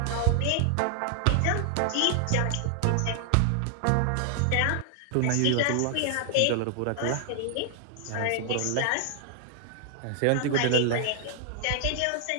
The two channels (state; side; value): different; both; correlation 0.00